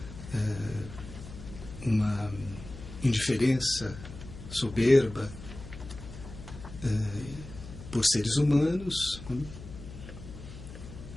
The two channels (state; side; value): noise; left; hum, 13 dB below the sound